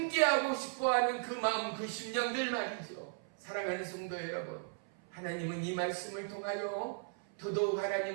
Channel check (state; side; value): silent; left; 54 dB below the other